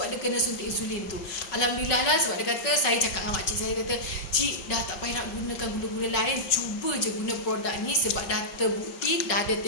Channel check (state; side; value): late; right; 5.3 ms